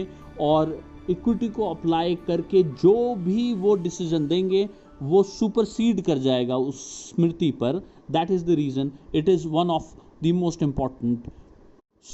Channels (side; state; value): both; identical; correlation 1.00